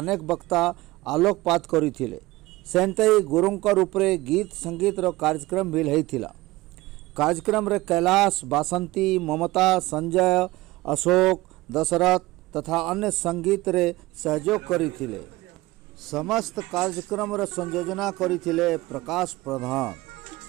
वक्ता आलोकपात करिथिले। सेंतई गुरुंकर उपरे गीत संगीत रो कार्यक्रम भी होइथिला। कार्यक्रम रे कैलाश, बासंती, ममता, संजय, अशोक, दशरथ तथा अन्य संगीत रे सहयोग करिथिले। समस्त कार्यक्रम रे संयोजना करिथिले प्रकाश प्रधान।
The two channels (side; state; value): left; quieter; 19.7 dB